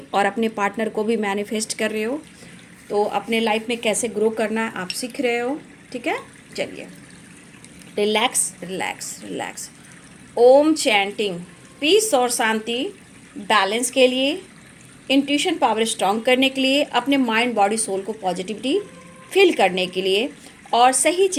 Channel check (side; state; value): both; identical; correlation 1.00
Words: और अपने पार्टनर को भी मैनिफेस्ट कर रहे हो। तो अपने लाइफ में कैसे ग्रो करना है आप सीख रहे हो, ठीक है। चलिए रिलैक्स रिलैक्स रिलैक्स। ओम चैंटिंग पीस और शांति, बैलेंस के लिए, इंट्यूशन पावर स्ट्रॉन्ग करने के लिए, अपने माइंड बॉडी सोल को पॉजिटिविटी फील करने के लिए और सही